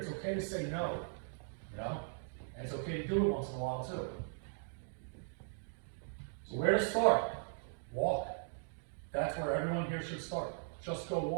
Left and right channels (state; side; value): silent; left; digital silence